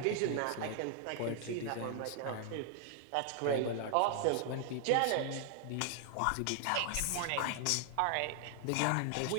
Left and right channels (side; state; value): both; different; correlation 0.00